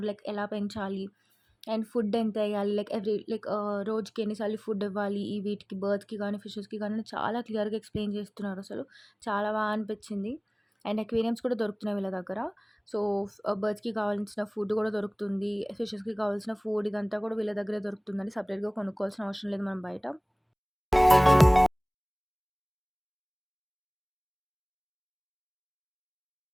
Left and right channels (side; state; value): both; identical; correlation 1.00